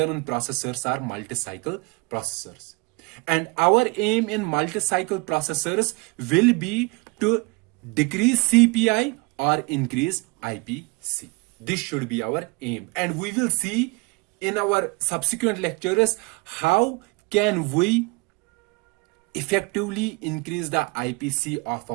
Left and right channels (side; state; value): left; quieter; 27.0 dB